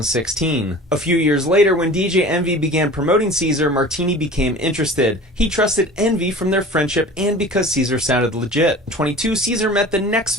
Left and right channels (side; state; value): both; normal; correlation 0.40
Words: A few years later, when DJ Envy began promoting Cesar, Martini became interested. He trusted Envy from their friendship and because Cesar sounded legit. In 22, Cesar met the next